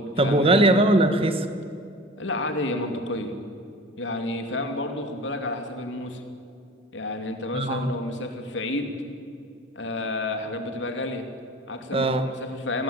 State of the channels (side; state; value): both; normal; correlation 0.39